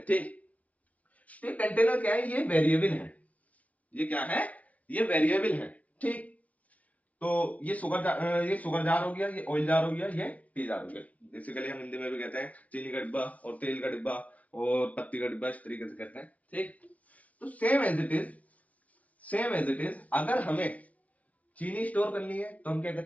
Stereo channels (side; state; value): right; late; 0.069 ms